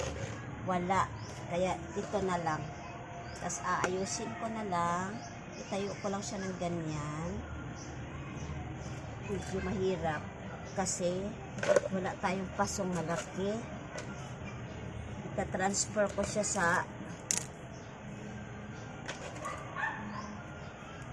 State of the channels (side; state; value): both; identical; correlation 1.00